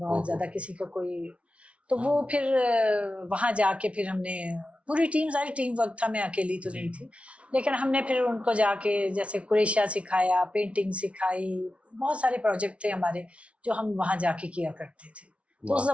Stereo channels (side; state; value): left; late; 0.062 ms